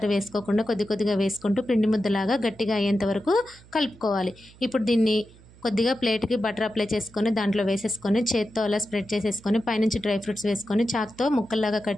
వేసుకోకుండా కొద్దిగా వేసుకుంటూ పిండి ముద్దలాగా గట్టిగా అయ్యేంత వరకు కలుపుకోవాలి. ఇప్పుడు దీన్ని కొద్దిగా ప్లేట్కి బటర్ అప్లై చేసుకొని దాంట్లో వేసేసుకొని చేత్తో అలా స్ప్రెడ్ చేసేసుకొని పైనుంచి డ్రై ఫ్రూట్స్ వేసుకొని చాక్తో ముక్కల్లాగా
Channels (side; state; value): right; noise; hum, 24 dB below the sound